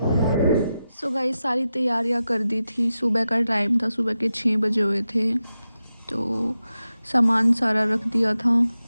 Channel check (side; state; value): both; inverted; correlation -0.91